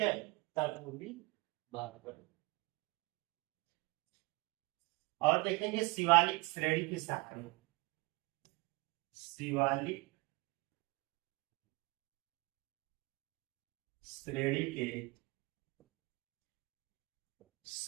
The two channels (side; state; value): left; quieter; 24.4 dB